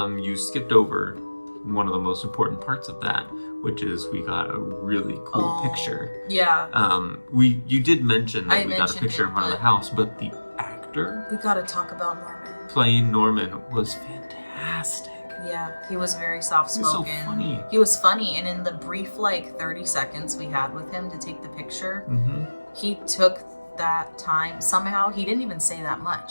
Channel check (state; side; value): inverted; both; correlation -1.00